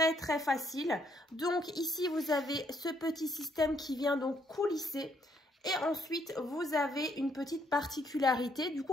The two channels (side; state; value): both; normal; correlation 0.71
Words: facile. Donc ici vous avez ce petit système qui vient donc coulisser. Et ensuite vous avez une petite particularité, du